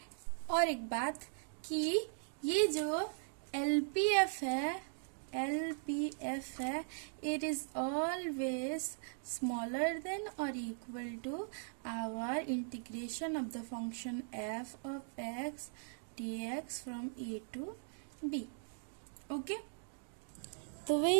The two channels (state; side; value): silent; left; digital silence